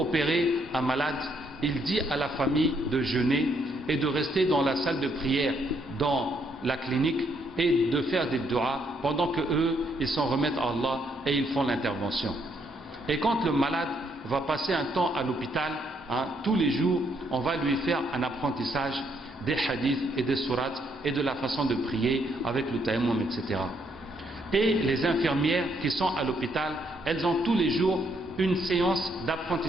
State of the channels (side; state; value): both; normal; correlation 0.73